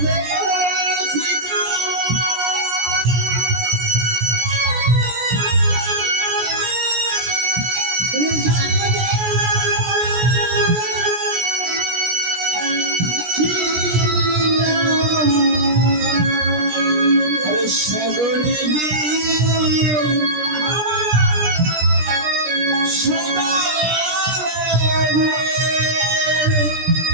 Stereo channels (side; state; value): left; late; 17 ms